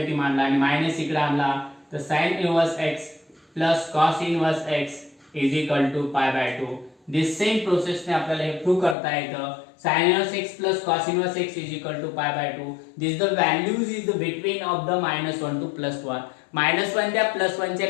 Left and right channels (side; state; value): right; drops out; at 9.0 s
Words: मांडला आणि मायनस इकडे आणला तर sin inverse x plus cos inverse x is equal to pi by 2. This same process ने आपल्याला हे प्रूव्ह करता येतं. sin inverse x plus cos inverse x is equal to pi by 2. This the values is the between of the -1 to +1. -1 त्या +1 च्या